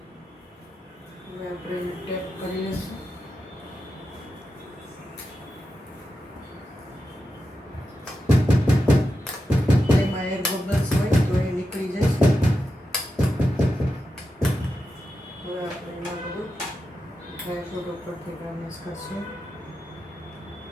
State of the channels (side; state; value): both; normal; correlation 0.89